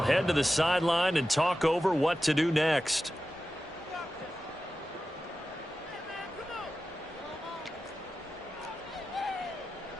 head to the sideline and talk over what to do next.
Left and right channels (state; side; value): normal; both; correlation 0.93